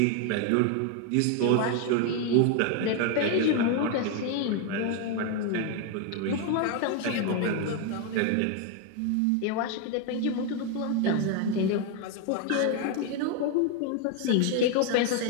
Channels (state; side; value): different; both; correlation 0.01